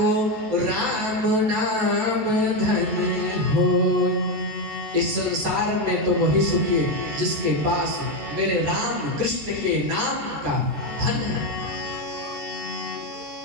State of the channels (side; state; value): left; late; 13 ms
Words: राम नाम धन हो। इस संसार में तो वही सुखी है जिसके पास मेरे राम कृष्ण के नाम का धन है।